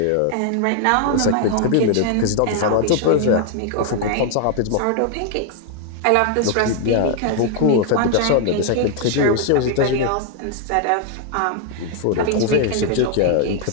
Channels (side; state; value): both; different; correlation 0.00